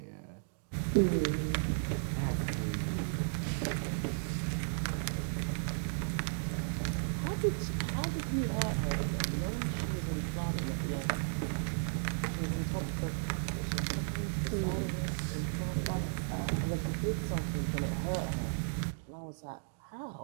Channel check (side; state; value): left; silent; digital silence